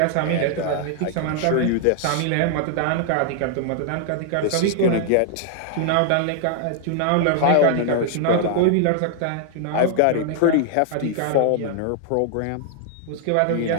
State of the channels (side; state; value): both; different; correlation -0.01